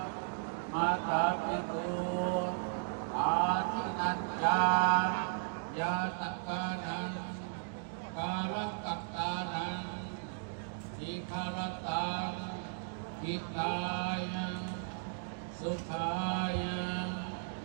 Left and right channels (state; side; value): silent; left; digital silence